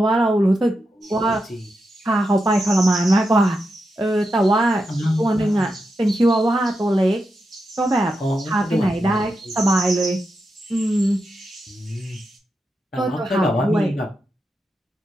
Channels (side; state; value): both; normal; correlation 0.87